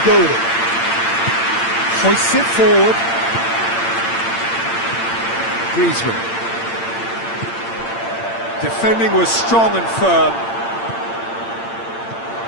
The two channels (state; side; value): late; right; 8.8 ms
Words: go at it. Hoists it forward. Griezmann. Defending was strong and firm.